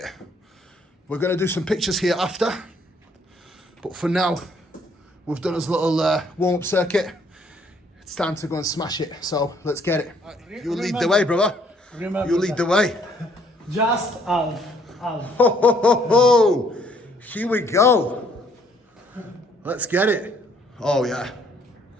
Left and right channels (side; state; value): both; normal; correlation 0.64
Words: We're going to do some pictures here after, but for now, we've done his little warm-up circuit. It's time to go and smash it, so let's get it. You lead the way, brother. Remember You lead the way. Just half. Ho, ho, ho, ho. Here we go. Let's get it. Oh yeah.